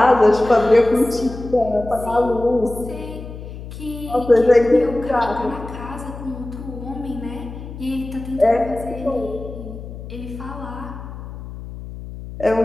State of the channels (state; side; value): noise; left; hum, 12 dB below the sound